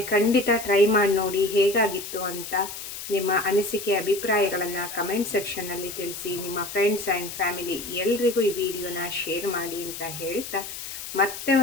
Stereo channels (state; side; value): noise; left; hiss, 9 dB below the sound